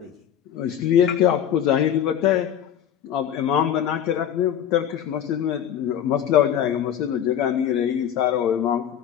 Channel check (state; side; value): quieter; right; 9.7 dB